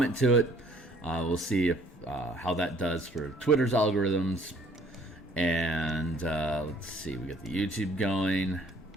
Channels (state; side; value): normal; both; correlation 0.59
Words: to it. We'll see if how that does for Twitter's algorithms. And let's see, we got the YouTube going.